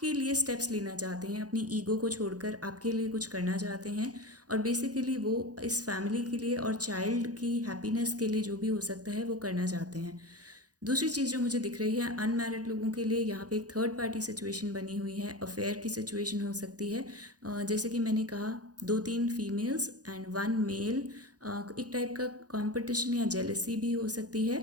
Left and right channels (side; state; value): left; late; 0.68 ms